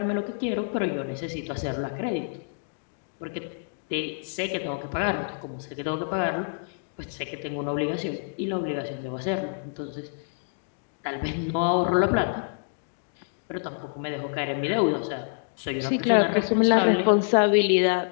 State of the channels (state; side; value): silent; right; digital silence